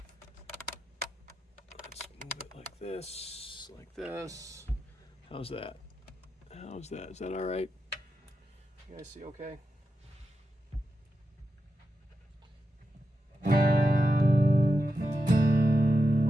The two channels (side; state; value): both; normal; correlation 0.88